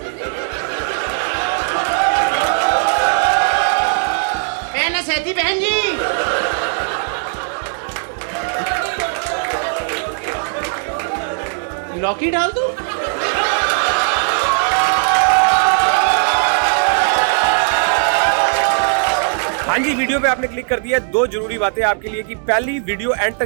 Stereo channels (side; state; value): left; silent; 68 dB below the other